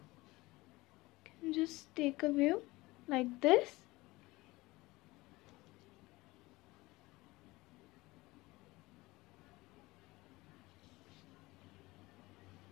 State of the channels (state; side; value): quieter; right; 20.8 dB